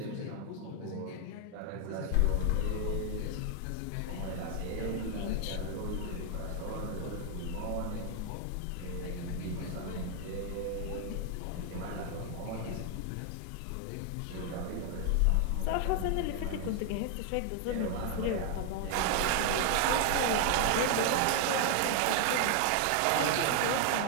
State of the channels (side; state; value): both; different; correlation 0.00